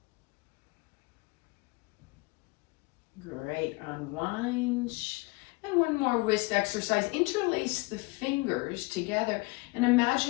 Great, unwind. And one more wrist exercise. Interlace the fingers together and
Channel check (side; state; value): right; quieter; 26.1 dB